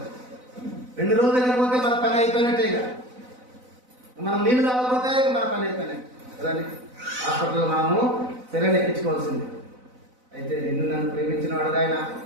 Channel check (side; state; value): left; late; 4.0 ms